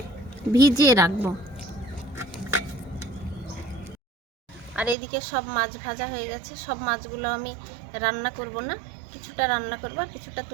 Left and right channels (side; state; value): left; drops out; at 5.0 s